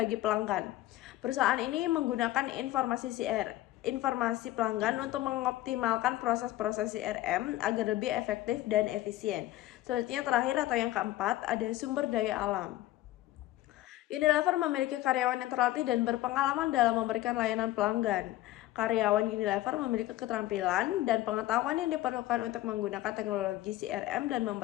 pelanggan. Perusahaan ini menggunakan informasi pelanggan untuk mengoptimalkan proses-proses CRM agar lebih efektif dan efisien. Selanjutnya terakhir atau yang keempat ada sumber daya alam. Unilever memiliki karyawan yang terlatih dan berpengalaman dalam memberikan layanan pelanggan. Karyawan Unilever memiliki keterampilan dan pengetahuan yang diperlukan untuk menggunakan teknologi CRM dan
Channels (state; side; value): quieter; right; 15.8 dB